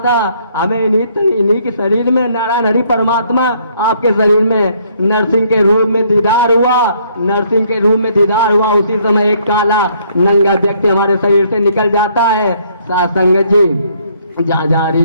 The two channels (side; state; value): both; inverted; correlation -0.66